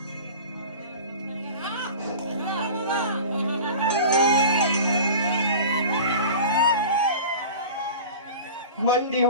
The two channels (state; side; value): inverted; both; correlation -0.36